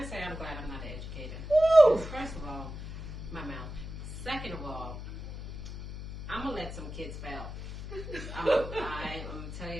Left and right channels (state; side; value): noise; left; hum, 9 dB below the sound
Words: say I'm glad I'm not an educator? Woo! First of all, my mouth. Second of all, I'm gonna let some kids fail. I'm gonna tell